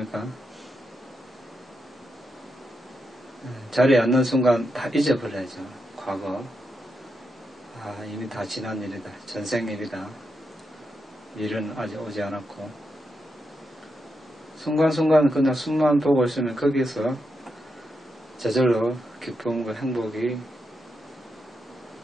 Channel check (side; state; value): both; normal; correlation 0.84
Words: 자리에 앉는 순간 다 잊어버려야죠. 과거. 이미 다 지난 일이다. 전생 일이다. 일은 아직 오지 않았고. 순간순간 그냥 숨만 보고 있으면 거기서 저절로 기쁨과 행복이